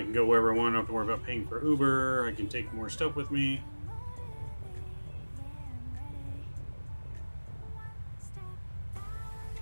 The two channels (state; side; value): inverted; both; correlation -1.00